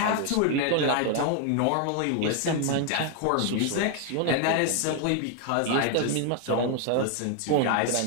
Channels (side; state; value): both; different; correlation 0.01